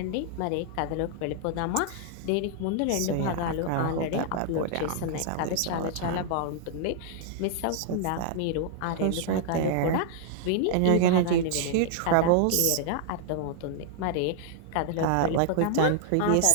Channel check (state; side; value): different; both; correlation 0.00